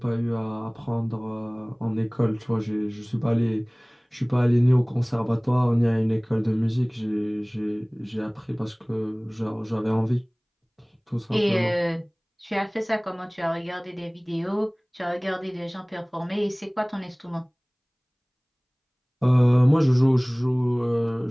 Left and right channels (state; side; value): identical; both; correlation 1.00